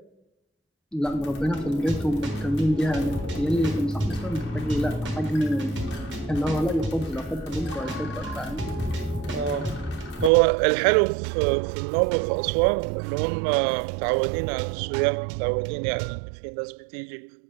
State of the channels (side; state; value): left; drops out; at 10.3 s